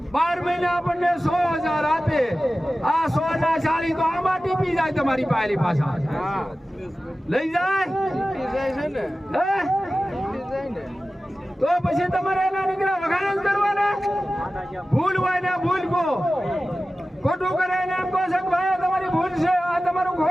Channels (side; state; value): both; normal; correlation 0.95